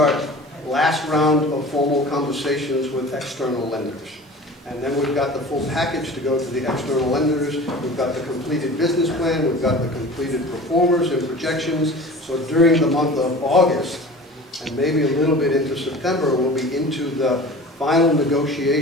last round of formal conversations with external lenders. And then we've got the full package to go to the external lenders. We've got the completed business plan. We've got the completed performers and projections. So during the month of August, and maybe a little bit into September, we'll be into the final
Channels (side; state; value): both; normal; correlation 0.39